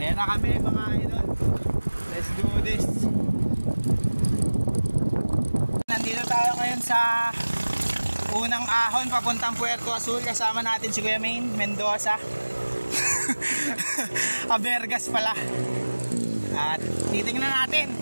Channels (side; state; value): both; inverted; correlation -1.00